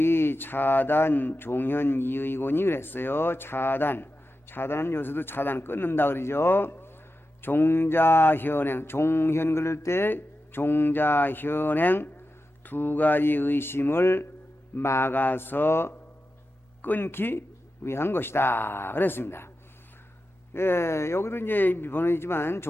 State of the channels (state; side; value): normal; both; correlation 0.91